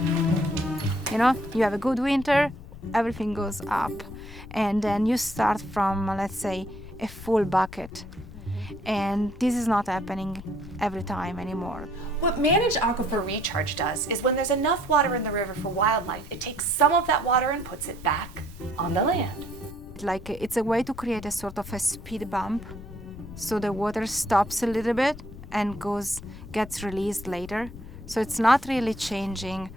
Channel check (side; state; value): left; noise; rumble, 14 dB below the sound